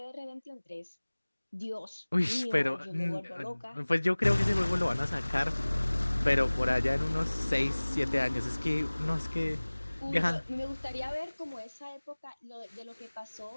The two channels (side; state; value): both; inverted; correlation -1.00